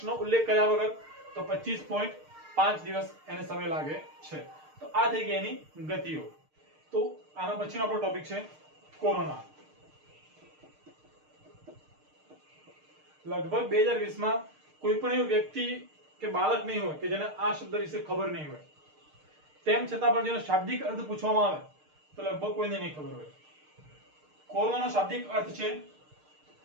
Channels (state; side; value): late; left; 6.6 ms